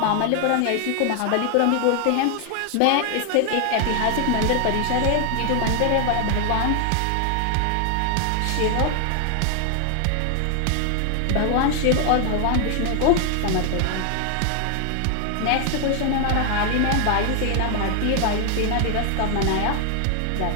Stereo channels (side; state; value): both; different; correlation 0.00